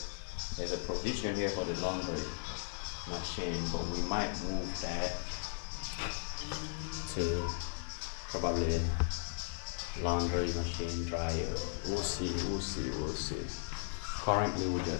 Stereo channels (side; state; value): right; silent; 53 dB below the other